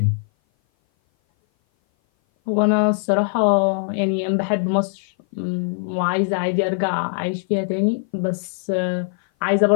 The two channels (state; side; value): silent; right; 57 dB below the other